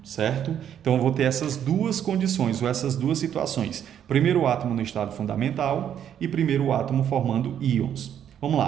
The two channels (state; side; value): quieter; left; 9.5 dB